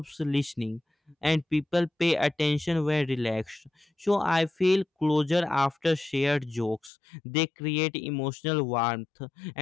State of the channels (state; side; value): drops out; right; at 6.9 s